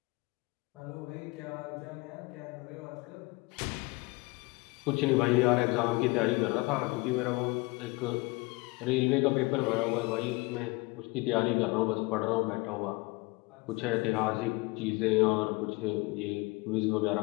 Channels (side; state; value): right; quieter; 25.1 dB